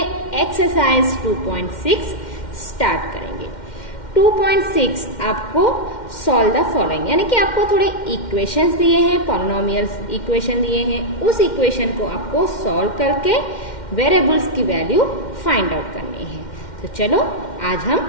एक्सरसाइज 2.6 स्टार्ट करेंगे। 2.6 आपको सॉल्व द फॉलोइंग, यानी कि आपको थोड़े इक्वेशंस दिए हैं, पॉलिनोमियल इक्वेशन दिए हैं। उस इक्वेशन को आपको सॉल्व करके वेरिएबल्स की वैल्यू फाइंड आउट करनी है। तो चलो आज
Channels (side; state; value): right; late; 2.1 ms